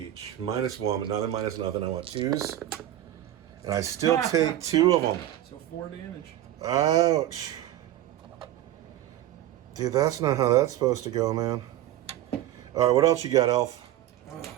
-1, but now they're minus nothing. I want 2s. And I still take 2 of them. So 4 damage. Ouch. Dude, that's not how that's supposed to go, man. All right, what else you got, Elf? Oh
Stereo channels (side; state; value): left; quieter; 13.2 dB